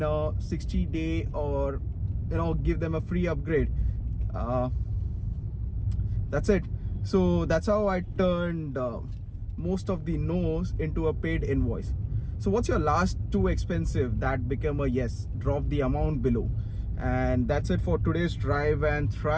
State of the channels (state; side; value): identical; both; correlation 1.00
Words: a 60-day, or give them a free upgrade. That's it. So that's how I turned most of the no's into a paid invoice. So what's your last too expensive that became a yes? Drop the amount below. And that's it for today's Drive and